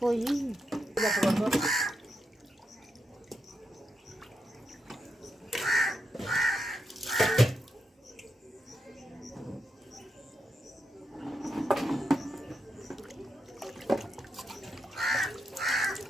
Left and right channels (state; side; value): normal; both; correlation 0.85